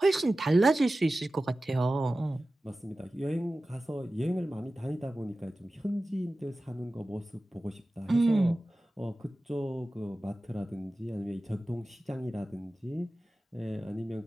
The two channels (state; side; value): normal; both; correlation 0.95